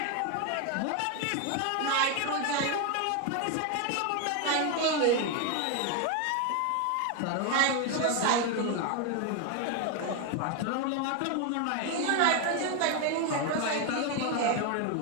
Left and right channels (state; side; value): different; both; correlation 0.01